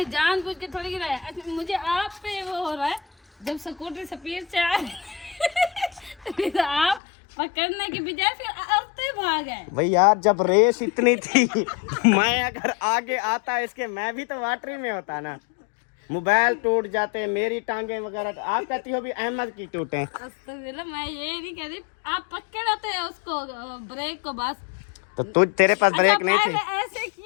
जानबूझ के थोड़ी गिराया। अच्छा, मुझे आप पे वो हो रहा है, जब स्कूटी स्पीड से आ फिर आप पकड़ने की बजाय फिर आते भाग गए। भाई यार जब रेस इतनी थी मैं अगर आगे आता इसके, मैं भी तो वाटरी में होता ना। मोबाइल टूट जाते, मेरी टांगे वगैरह। आप कहती हो भी अहमद की टूटे। अस्तगफिरुल्लाह, मैं ये नहीं कह रही, आप पकड़ते हैं उसको ब्रेक को बस। तो तुझ तेरे पास ब्रेक अच्छा, नहीं थी? पहले ऐसे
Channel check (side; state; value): right; drops out; at 7.0 s